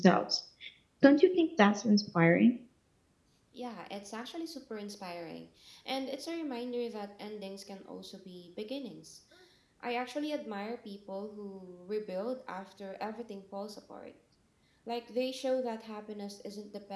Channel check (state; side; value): identical; both; correlation 1.00